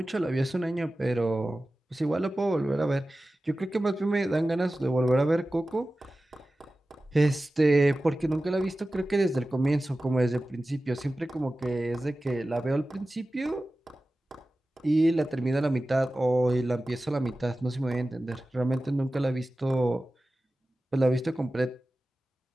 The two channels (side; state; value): both; normal; correlation 0.95